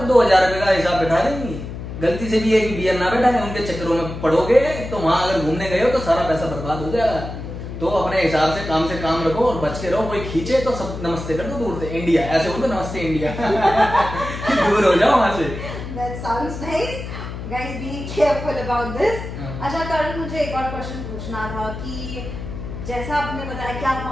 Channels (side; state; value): left; noise; hum, 8 dB below the sound